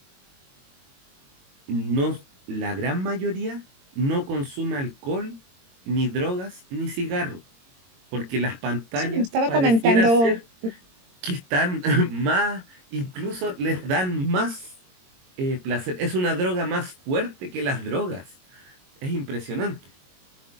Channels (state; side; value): late; left; 22 ms